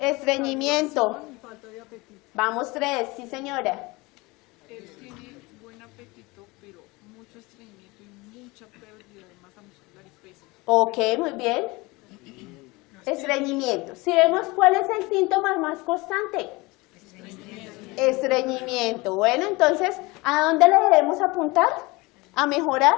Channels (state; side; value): quieter; right; 23.6 dB